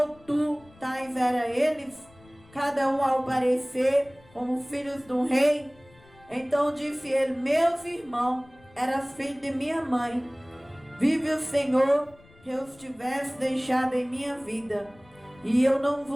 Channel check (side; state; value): left; noise; rumble, 26 dB below the sound